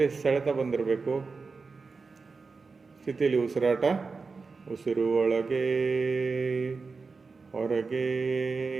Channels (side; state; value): left; quieter; 4.5 dB